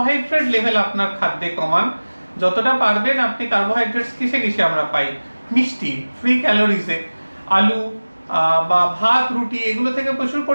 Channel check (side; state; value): both; inverted; correlation -1.00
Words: লেভেল আপনার খাদ্যে কমান, যতটা পারবেন। আপনি কার্বোহাইড্রেটস কিসে কিসে আমরা পাই? মিষ্টি, ফ্রি ক্যালোরিজে, আলু বা ভাত, রুটি, এগুলো থেকে প্রচুর